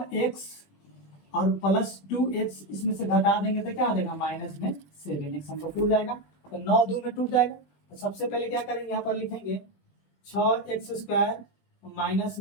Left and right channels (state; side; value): late; right; 20 ms